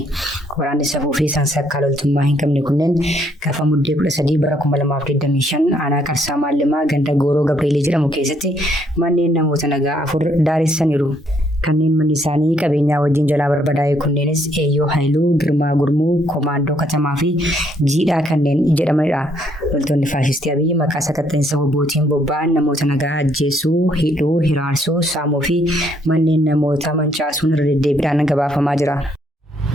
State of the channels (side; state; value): both; normal; correlation 0.69